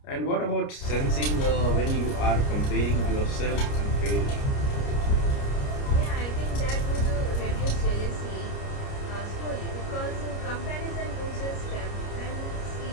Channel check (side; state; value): right; late; 29 ms